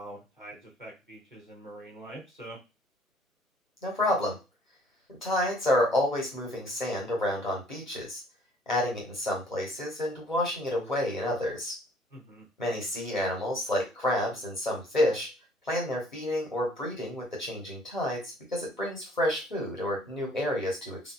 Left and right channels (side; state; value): both; normal; correlation 0.57